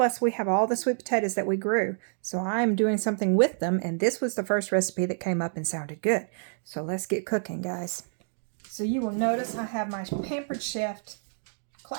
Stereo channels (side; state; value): left; silent; digital silence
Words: we have all the sweet potatoes that we grew. So I'm doing something with them, and this was the first recipe that came up and sounded good. So let's get cooking, guys. So you will notice I have my Pampered Chef